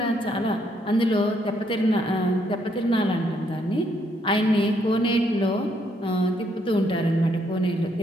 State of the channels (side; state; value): both; normal; correlation 0.72